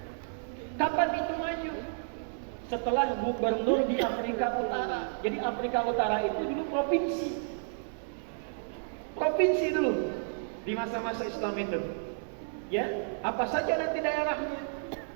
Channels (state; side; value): silent; left; digital silence